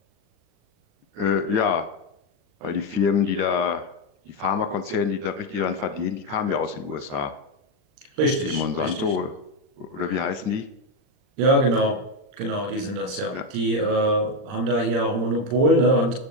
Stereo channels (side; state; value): left; late; 39 ms